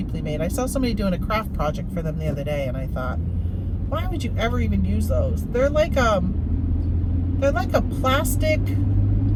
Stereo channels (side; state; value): both; identical; correlation 1.00